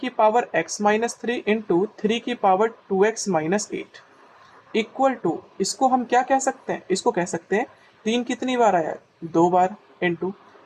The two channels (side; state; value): both; identical; correlation 1.00